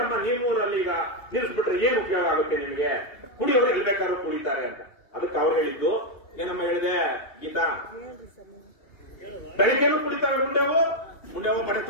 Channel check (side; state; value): right; late; 2.8 ms